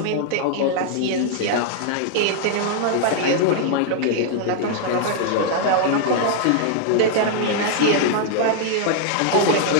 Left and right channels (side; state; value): both; different; correlation 0.00